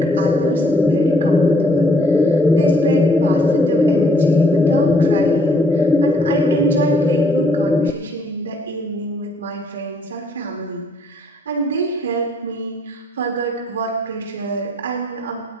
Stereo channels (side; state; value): both; normal; correlation 0.66